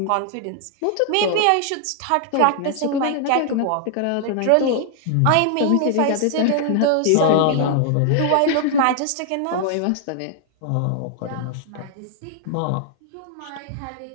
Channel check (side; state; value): both; different; correlation 0.00